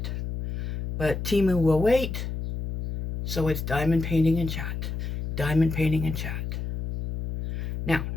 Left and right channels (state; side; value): noise; left; hum, 4 dB below the sound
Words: But Temu will wait. So it's diamond painting and chat. Diamond painting and chat. Now,